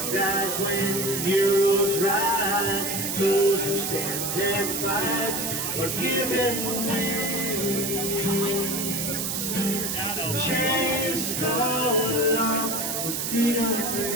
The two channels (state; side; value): noise; right; hiss, 2 dB below the sound